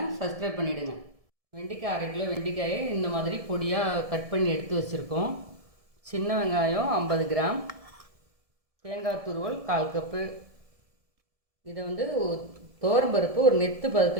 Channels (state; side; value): late; left; 1.7 ms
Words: சப்ஸ்கிரைப் பண்ணிவிடுங்க. வெண்டைக்காய் 1/2 கிலோ வெண்டைக்காயை இந்த மாதிரி பொடியாக கட் பண்ணி எடுத்து வச்சுருக்கோம். சின்ன வெங்காயம் 50 கிராம், தேங்காய் துருவல் 1/4 கப்பு. இதை துவரம்பருப்பு ஒரு நெத்து